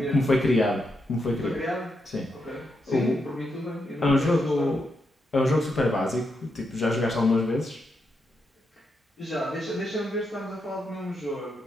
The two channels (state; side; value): normal; both; correlation 0.83